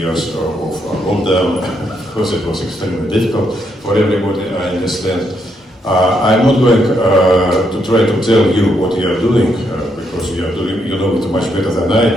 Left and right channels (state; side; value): normal; both; correlation 0.77